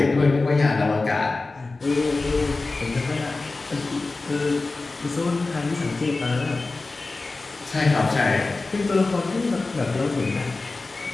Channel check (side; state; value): right; quieter; 3.5 dB